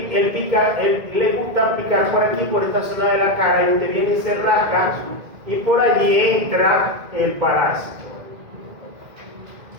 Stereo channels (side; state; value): left; late; 2.0 ms